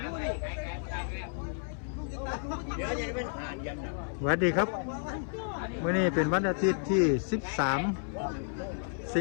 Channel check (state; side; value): silent; right; 57 dB below the other